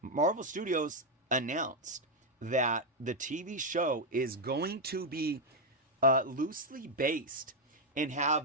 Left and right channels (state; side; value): normal; both; correlation 0.01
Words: Marvel Studios announced that the TV show is going to be loosely based and have